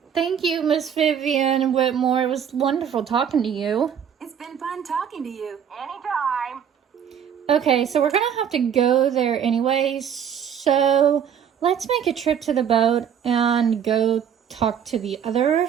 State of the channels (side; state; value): left; quieter; 8.3 dB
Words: Thank you, Miss Vivian Whitmore. It was wonderful talking to you. It's been fun talking to you. Anytime. Okay, so we're going to have to go there anyway. So let's make a trip to the boat and go talk to the other